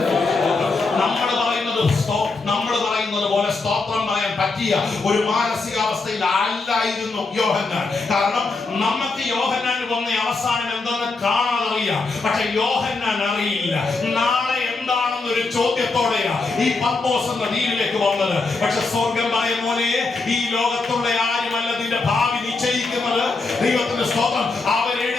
നമ്മൾ പറയുന്നത് പോലെ സ്തോത്രം പറയാൻ പറ്റിയ ഒരു മാനസികാവസ്ഥയിൽ അല്ലായിരുന്നു യോഹന്നാൻ. കാരണം നമുക്ക് യോഹന്നാന് വന്ന അവസാനം എന്തെന്ന് കാണാതറിയാം. പക്ഷെ യോഹന്നാൻ അറിയില്ല നാളെ എന്താണെന്നൊരു ചോദ്യത്തോടെയാ ഈ പത്മോസ് എന്ന ദ്വീപിലേക്ക് വന്നത്. പക്ഷെ സ്വർഗം പറയും, മോനെ, ഈ ലോകത്തുള്ള ആരുമല്ല നിന്റെ ഭാവി നിശ്ചയിക്കുന്നത്. ദൈവത്തിന്റെ സ്തോത്രം,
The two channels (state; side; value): quieter; right; 3.8 dB